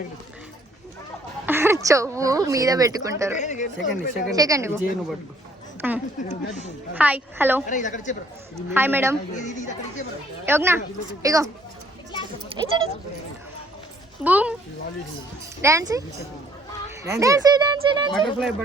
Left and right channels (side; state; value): both; normal; correlation 0.62